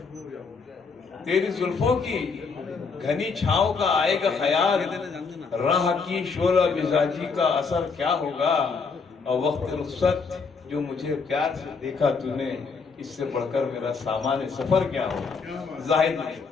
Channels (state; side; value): quieter; right; 5.0 dB